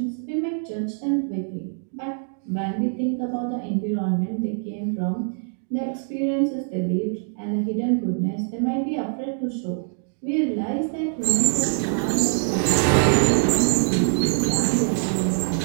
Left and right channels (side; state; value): left; silent; digital silence